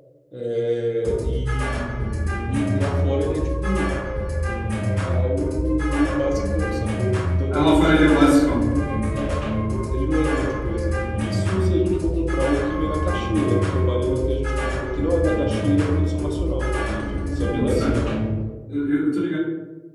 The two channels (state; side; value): identical; both; correlation 1.00